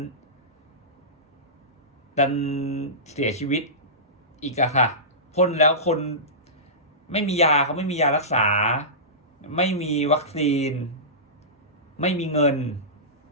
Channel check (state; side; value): normal; both; correlation -0.20